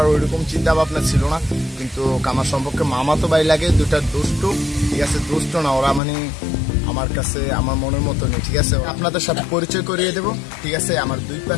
ওইরকম চিন্তা ভাবনা ছিল না, কিন্তু আমার সম্পর্কে মামা তো ভাই লাগে, দুটা দুষ্টু। ঠিক আছে, দুষ্ট না ওরা, মানে আমার কাছে আমার মনের মতো নেই। ঠিক আছে, আপনাদের সাথে পরিচয় করিয়ে দেবো। ঠিক আছে, আমার দুই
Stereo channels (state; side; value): drops out; right; at 6.0 s